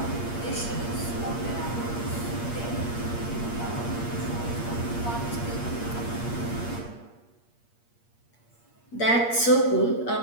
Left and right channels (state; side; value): late; right; 8.5 ms